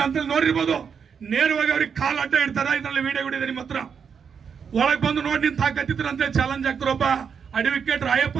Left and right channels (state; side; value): quieter; left; 6.7 dB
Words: ಅಂತೇಳಿ ನೋಡಿರ್ಬೋದು. ನೇರವಾಗಿ ಅವ್ರಿಗೆ ಕಾಲ್ ಅಡ್ಡ ಇಡ್ತಾರ. ಇದರಲ್ಲಿ ವಿಡಿಯೋ ಇದೆ ನಿಮ್ಮ ಹತ್ರ. ಒಳಗೆ ಬಂದು ನೋಡಿ ನಿಂತು ಹಾಕತ್ತಿದ್ರು ಅಂತ ಚಾಲೆಂಜ್ ಆಗ್ತಾರ ಒಬ್ಬ ಅಡ್ವೊಕೇಟ್ ರಾಯಪ್ಪ